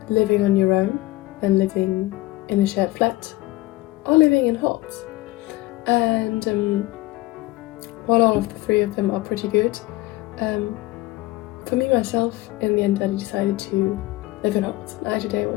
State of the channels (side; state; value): right; quieter; 19.1 dB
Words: living on your own and living in a shared flat, or living in halls. And while all of the three of them are pretty good, for me myself, in the end I decided to live in halls. I today